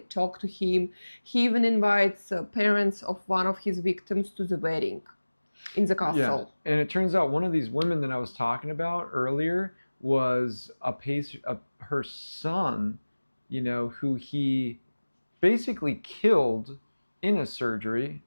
talk to him. He even invites parents of one of his victims to the wedding in the Yeah. castle. And it turns out one of these women that I was talking about earlier was her son, you know, who he basically killed in a surgery,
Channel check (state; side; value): inverted; both; correlation -1.00